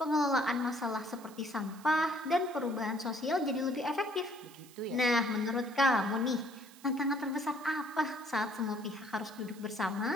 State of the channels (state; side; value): noise; right; hiss, 22 dB below the sound